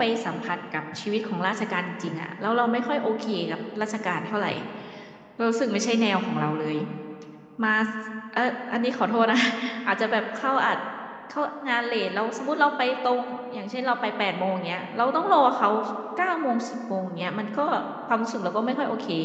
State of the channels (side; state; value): both; identical; correlation 1.00